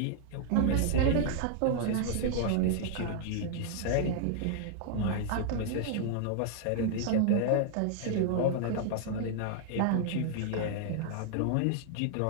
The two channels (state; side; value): different; both; correlation -0.01